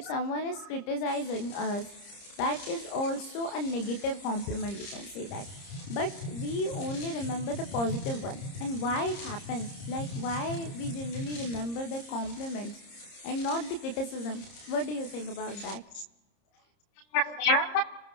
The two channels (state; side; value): late; right; 30 ms